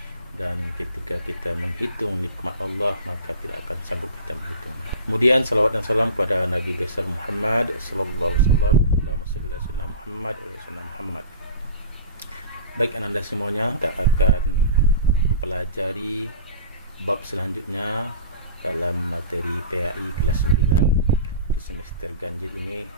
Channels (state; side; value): inverted; both; correlation -0.37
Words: Dan ketika kita menghitung nikmat Allah, maka tidak akan sanggup kita menghitung. Kemudian salawat dan salam kepada Nabi besar Muhammad sallallahu alaihi wasallam. Allahumma shalli ala sayyidina Muhammad wa ala sayyidina Muhammad. Baik Ananda semuanya, kita akan mempelajari bab selanjutnya dalam materi PAI kelas 9 di semester ganjil ini,